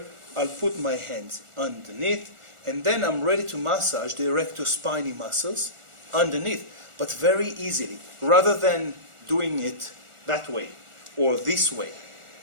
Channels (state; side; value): late; left; 1.4 ms